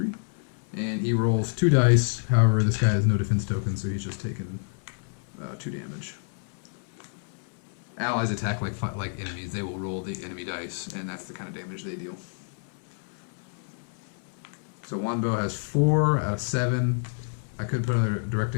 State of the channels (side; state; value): right; silent; 58 dB below the other